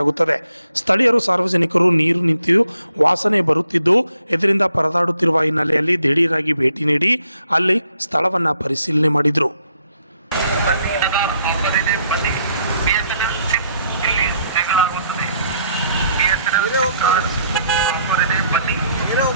ಆಗುತ್ತದೆ. ಸ್ಥಳೀಯರು ಸಾರ್ವಜನಿಕರು ನೀರು ನಿಂತು ವಾಸನೆ ಬರುತ್ತಿದ್ದು ಇದರಿಂದ ಪರದಾಡುತ್ತಿರುವ ಹಿನ್ನೆಲೆಯಲ್ಲಿ ದಿಢೀರಾಗಿ ಭೇಟಿ ನೀಡಿ ಅಲ್ಲಿ ಸ್ಥಳವನ್ನು ಪರಿಶೀಲನೆ ಮಾಡಿದರು.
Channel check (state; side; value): inverted; both; correlation -0.72